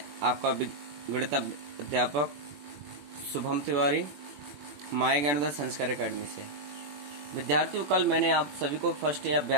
आपका गणित अध्यापक शुभम तिवारी माय ज्ञानोदय संस्कार अकेडमी से। विद्यार्थियों, कल मैंने आप सभी को फर्स्ट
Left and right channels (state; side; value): late; left; 21 ms